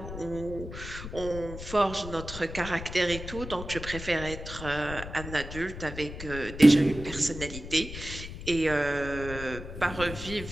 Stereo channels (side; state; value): left; noise; rumble, 10 dB below the sound